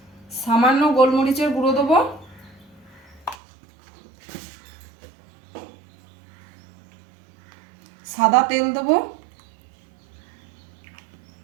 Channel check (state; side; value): drops out; left; at 3.4 s